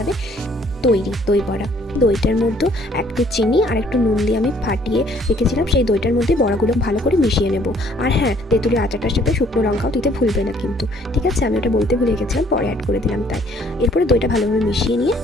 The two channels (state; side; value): normal; both; correlation 0.61